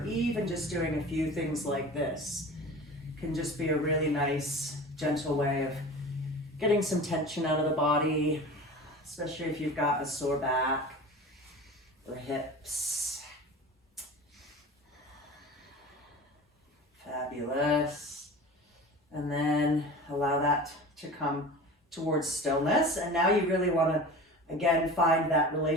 even just doing a few things like this can just be a really nice, gentle way of getting some tension out of the body, especially if you've got a sore back or hips. Fabulous. And then allow that to come towards stillness. And now you really want to, again, find that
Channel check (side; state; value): both; normal; correlation 0.36